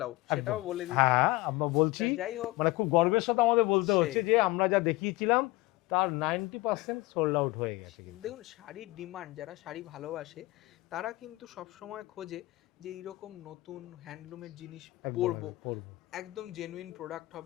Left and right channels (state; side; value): quieter; right; 20.3 dB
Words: আউট, সেটাও বলে দিই। হ্যাঁ আমরা বলছি, যাই হোক, মানে খুব গর্বের সাথে আমাদের বলতে হচ্ছে যে আমরা যা দেখিয়েছিলাম তার 90% সোল্ড আউট হয়ে গেছে। দেখুন শাড়ির ডিমান্ড, যারা শাড়ি ভালোবাসে তারা কিন্তু সব সময় খোঁজে যে এইরকম নতুন হ্যান্ডলুমের জিনিস পরবো, একদম জেনুইন প্রোডাক্ট